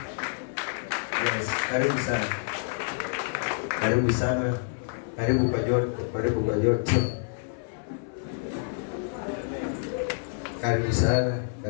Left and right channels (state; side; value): silent; right; 59 dB below the other